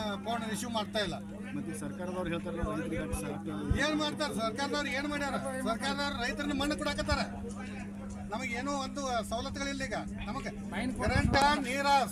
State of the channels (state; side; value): identical; both; correlation 1.00